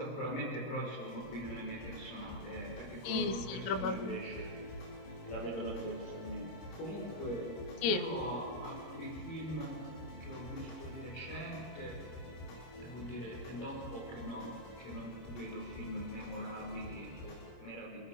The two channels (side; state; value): right; late; 26 ms